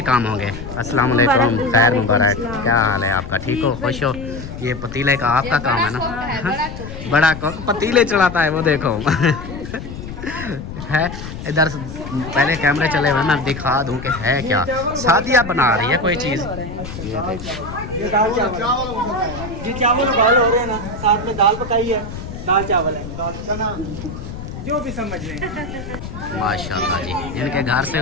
काम होंगे। अस्सलाम वालेकुम, खैर मुबारक। क्या हाल है आपका? ठीक हो, खुश हो? ये पतीले का आपका काम है ना? बड़ा कोक पतीले चढ़ाता है वो, देखो। है इधर पहले कैमरे चले हुए, मैं दिखा दूं कि है क्या। शादियाँ बना रही है कोई चीज़। ये देखो, ये दाल चावल जी, चावल उबाल हो रहे हैं ना, साथ में दाल पकाई है, दाल चावल है, दाल चना, जो भी समझ लें। माशाल्लाह जी। इनके घर से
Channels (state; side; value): noise; left; rumble, 10 dB below the sound